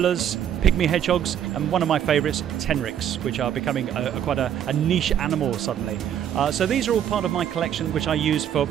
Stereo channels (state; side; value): quieter; left; 9.8 dB